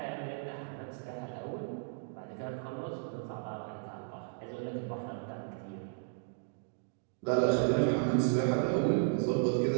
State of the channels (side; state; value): left; silent; digital silence